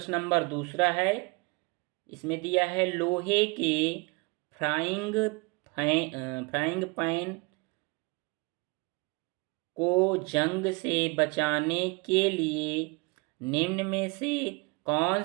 नंबर दूसरा है, इसमें दिया है लोहे के फ्राइंग पैन को जंग से बचाने के लिए निम्न में से कौन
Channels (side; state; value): left; quieter; 28.7 dB